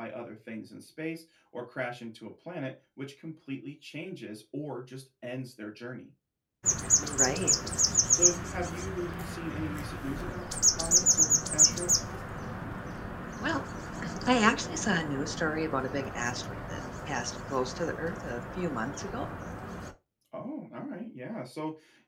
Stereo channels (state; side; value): identical; both; correlation 1.00